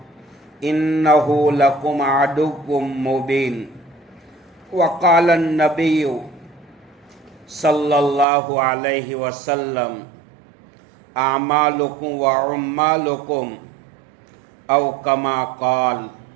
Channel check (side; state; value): left; drops out; at 8.2 s